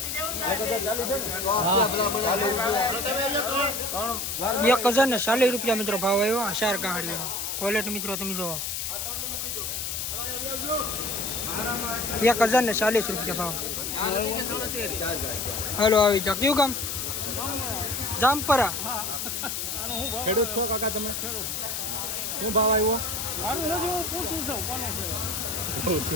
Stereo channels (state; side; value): noise; left; hiss, 3 dB below the sound